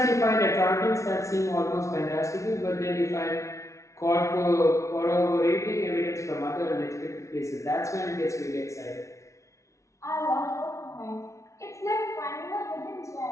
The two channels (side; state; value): right; late; 0.14 ms